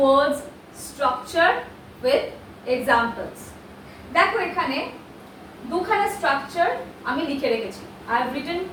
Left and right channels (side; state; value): both; identical; correlation 1.00